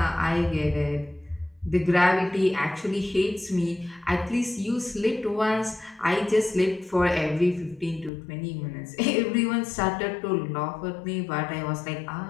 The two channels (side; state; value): right; drops out; at 8.1 s